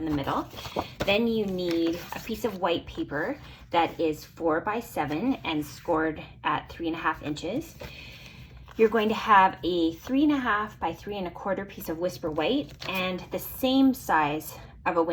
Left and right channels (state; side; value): identical; both; correlation 1.00